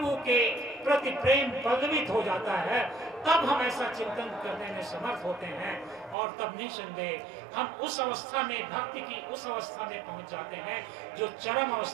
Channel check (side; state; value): left; drops out; at 6.2 s